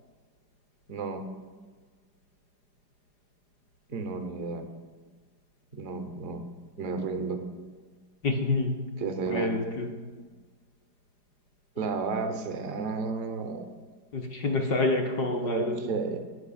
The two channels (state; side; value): late; right; 4.9 ms